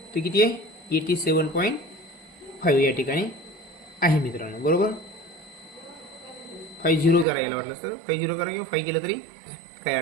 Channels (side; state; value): left; drops out; at 7.2 s